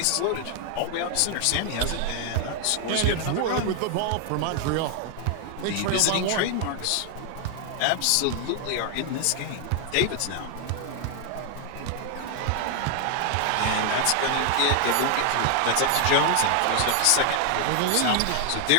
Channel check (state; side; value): different; both; correlation 0.00